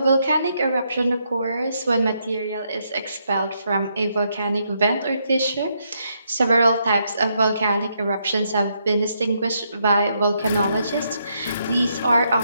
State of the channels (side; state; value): both; inverted; correlation -0.77